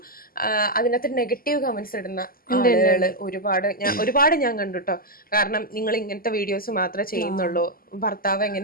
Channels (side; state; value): right; late; 0.42 ms